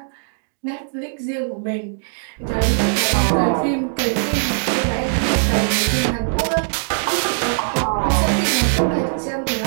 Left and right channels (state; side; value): silent; left; digital silence